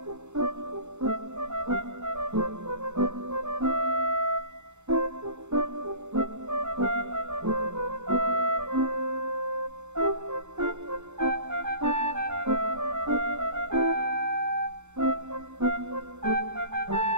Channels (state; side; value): late; left; 0.83 ms